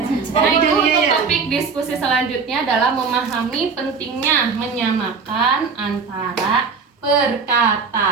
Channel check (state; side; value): quieter; left; 5.2 dB